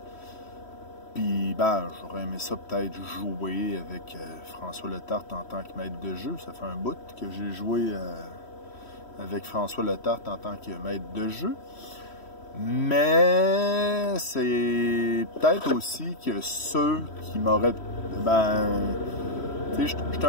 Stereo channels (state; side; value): late; right; 3.1 ms